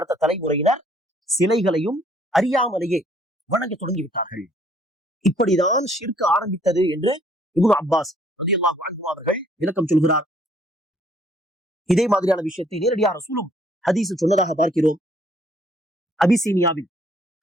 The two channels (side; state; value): both; normal; correlation 0.63